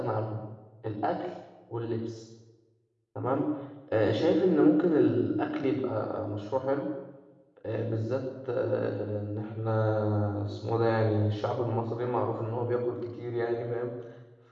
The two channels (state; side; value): identical; both; correlation 1.00